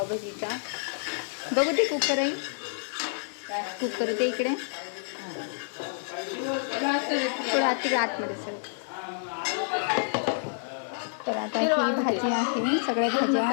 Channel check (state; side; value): silent; right; digital silence